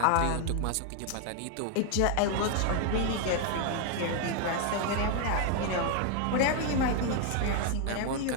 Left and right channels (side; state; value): both; different; correlation 0.00